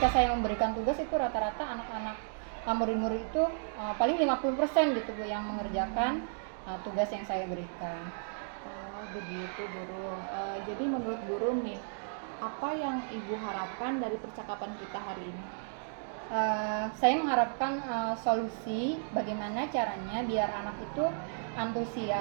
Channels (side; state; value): left; silent; digital silence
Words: saya memberikan tugas itu rata-rata anak-anak murid-murid itu paling 50% gitu Bu yang mengerjakan tugas yang saya berikan. Oh, begitu, Burung. Jadi menurut Burung nih, apa yang Ibu harapkan dari percakapan kita hari ini? Saya mengharapkan solusi bagaimana caranya biar anak itu